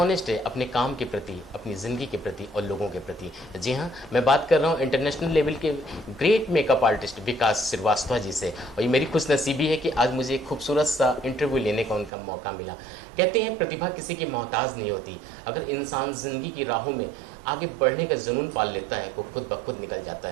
है अपने काम के प्रति, अपनी ज़िंदगी के प्रति और लोगों के प्रति। जी हाँ, मैं बात कर रहा हूँ इंटरनेशनल लेवल के ग्रेट मेकअप आर्टिस्ट विकास श्रीवास्तव जी से। और ये मेरी खुशनसीबी है कि आज मुझे एक खूबसूरत सा इंटरव्यू लेने का उनका मौका मिला। कहते हैं प्रतिभा किसी की मोहताज नहीं होती। अगर इंसान ज़िंदगी की राहों में आगे बढ़ने का जुनून पाल लेता है वो खुद ब खुद निकल जाता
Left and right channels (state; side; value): drops out; left; at 12.1 s